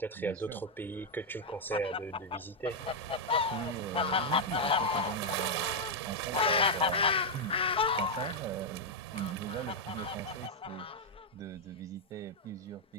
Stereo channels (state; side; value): normal; both; correlation -0.01